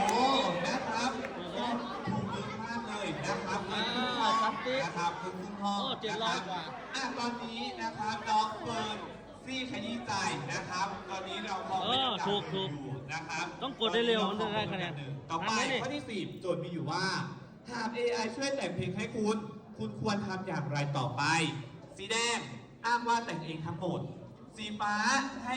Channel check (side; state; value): both; identical; correlation 1.00